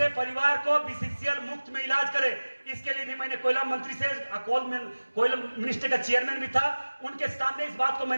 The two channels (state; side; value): inverted; both; correlation -1.00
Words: परिवार को बीसीसीएल मुफ्त में इलाज करे। इसके लिए भी मैंने कोयला मंत्री से, कोयला मिनिस्टर का चेयरमैन भी था, उनके सामने इस बात को